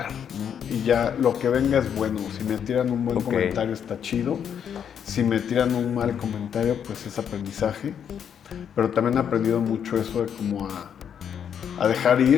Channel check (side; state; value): right; quieter; 8.3 dB